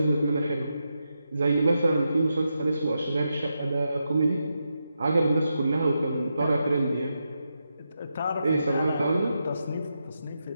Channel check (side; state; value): both; inverted; correlation -0.86